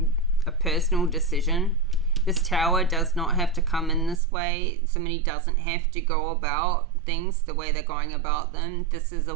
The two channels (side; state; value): left; drops out; at 4.2 s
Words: personal decision. This Tower does not have to come in this way. Somebody doesn't have to go about things the way they're going about them. This is